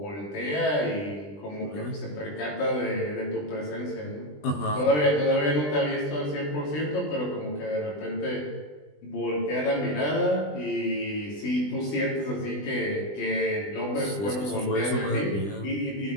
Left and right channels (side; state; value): right; late; 20 ms